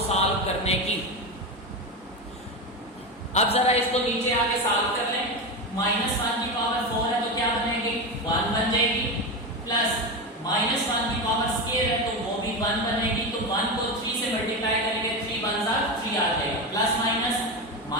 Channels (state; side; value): normal; both; correlation 0.18